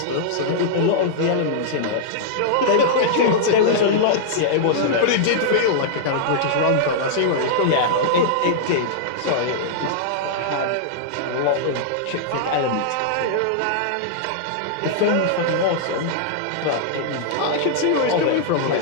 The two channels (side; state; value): both; different; correlation -0.02